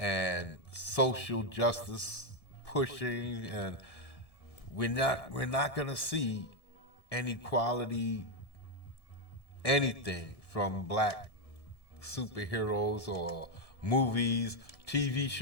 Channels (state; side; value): late; right; 1.7 ms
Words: social justice pushing, and we're not going to see any quality anything from black superheroes or movies, TV